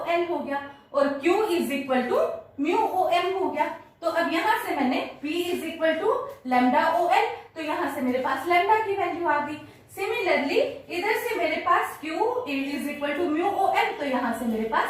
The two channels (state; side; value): identical; both; correlation 1.00